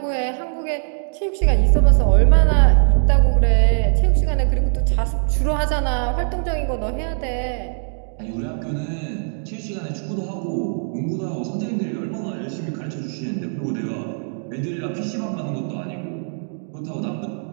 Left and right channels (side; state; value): left; silent; digital silence